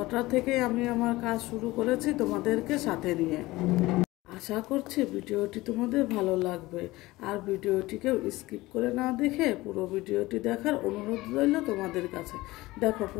থেকে আমি আমার কাজ শুরু করেছি তোমাদেরকে সাথে নিয়ে। আশা করছি ভিডিওটি তোমাদের ভালো লাগবে, আর ভিডিওটিকেও স্কিপ করে না দেখে পুরো ভিডিওটি দেখার অনুরোধ রইল তোমাদের কাছে। দেখো,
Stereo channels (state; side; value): quieter; right; 19.3 dB